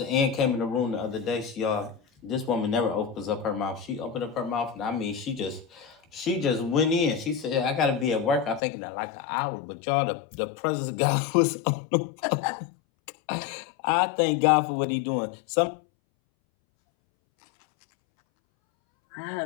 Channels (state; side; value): drops out; right; at 8.6 s